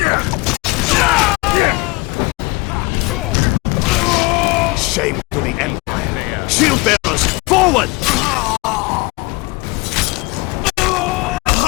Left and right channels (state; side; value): quieter; right; 25.5 dB